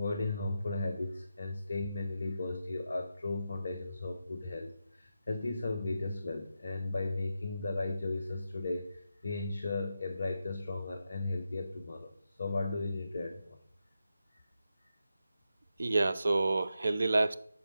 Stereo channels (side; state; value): both; inverted; correlation -0.87